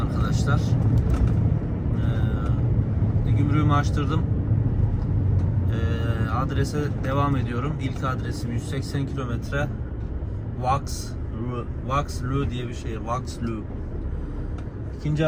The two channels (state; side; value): identical; both; correlation 1.00